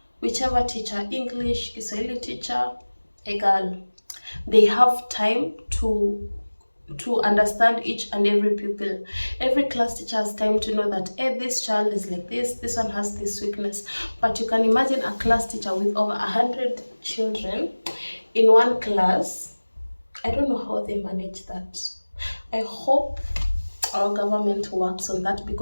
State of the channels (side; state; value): both; inverted; correlation -1.00